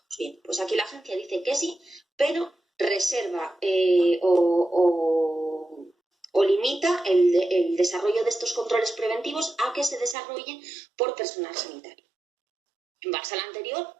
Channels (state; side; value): drops out; left; at 10.2 s